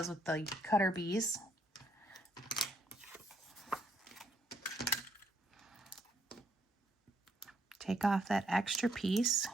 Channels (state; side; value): normal; both; correlation 0.71